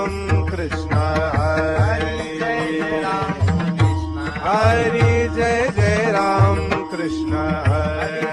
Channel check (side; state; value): both; identical; correlation 1.00